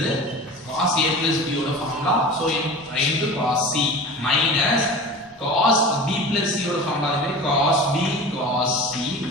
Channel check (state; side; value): normal; both; correlation 0.35